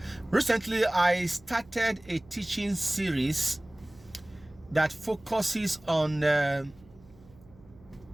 Recently, I started a teaching series that focuses on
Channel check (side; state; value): right; noise; hum, 25 dB below the sound